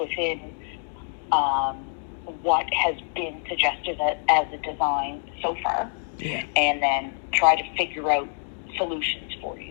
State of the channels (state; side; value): silent; right; digital silence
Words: what has been suggested as a design so far. Yeah. And then try to figure out solutions for